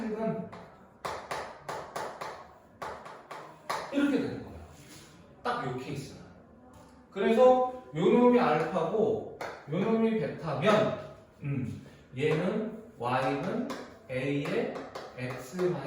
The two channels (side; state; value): both; identical; correlation 1.00